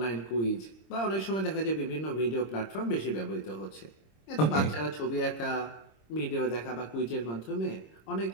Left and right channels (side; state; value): right; late; 26 ms